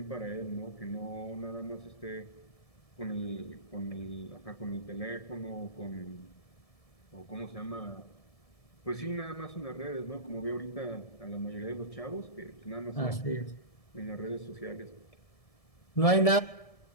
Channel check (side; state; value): right; late; 1.7 ms